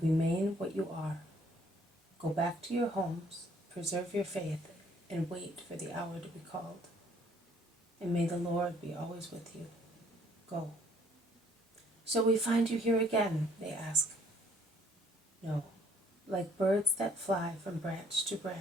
remain what you are. Go back to your homes, preserve your faith, and wait for the hour to be called. And may the Lord be always with you. Go. Shall we find you here again? They ask. No, like birds that fly from branch to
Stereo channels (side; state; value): both; normal; correlation 0.62